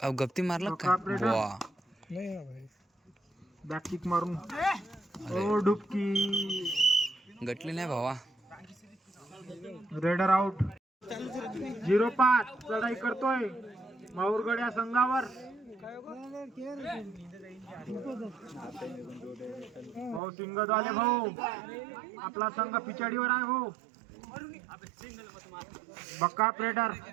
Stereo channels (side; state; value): left; drops out; at 20.2 s